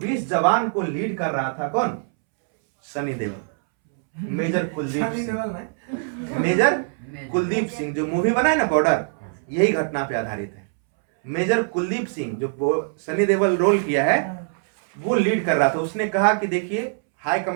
जवान को लीड कर रहा था कौन, सनी देओल, मेजर कुलदीप सिंह। मेजर कुलदीप सिंह जो मूवी बना है ना बॉर्डर, यही घटना पे आधारित है। मेजर कुलदीप सिंह जो सनी देओल रोल किया है, वो लीड कर रहा था। उसने कहा कि देखिए हाई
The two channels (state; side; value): silent; left; 64 dB below the other